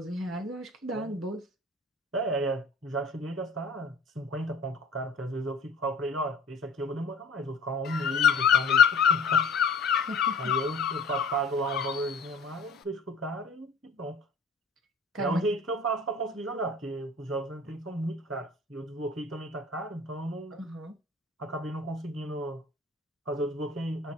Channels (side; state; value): right; quieter; 3.4 dB